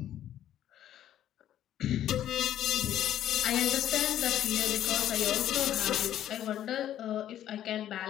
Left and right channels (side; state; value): right; quieter; 11.5 dB